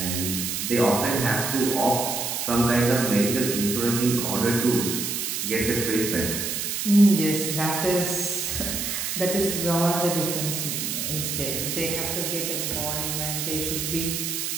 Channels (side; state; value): right; noise; hiss, 2 dB below the sound